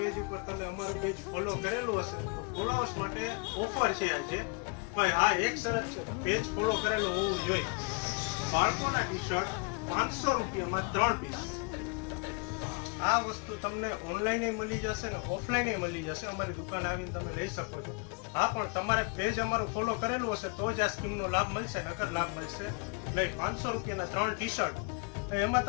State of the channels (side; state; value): right; quieter; 32.5 dB